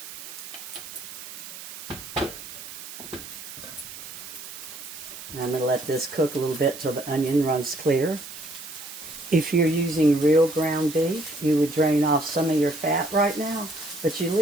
And I'm going to let this cook a little bit till the onion runs clear. If you're using real ground beef, you would drain off some of your fat right now, but you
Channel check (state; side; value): noise; right; hiss, 12 dB below the sound